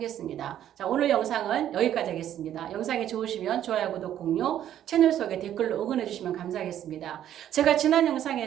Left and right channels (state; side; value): quieter; left; 11.1 dB